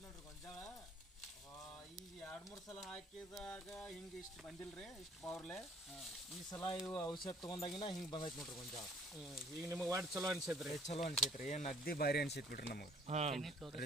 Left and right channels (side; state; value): both; normal; correlation 0.57